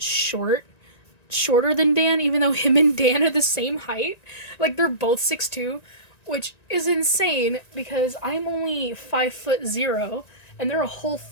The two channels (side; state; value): right; late; 1.9 ms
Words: than Dan, even though him and Dan are the same height. Like, they're both 6'2", which is insane, because I'm only 5'0", and they're a whole